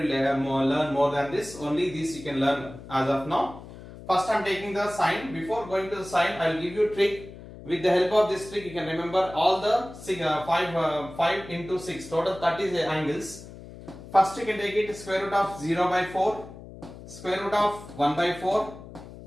you learn more than this. Only this you can learn as of now. First I am taking the sine. Before going to the sine, I will give you a trick. With the help of this trick you can remember all the 5 into 6, total 30 angles. First you can take it square root of 0 by 4, square root of 1 by 4,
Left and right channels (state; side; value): noise; left; hum, 16 dB below the sound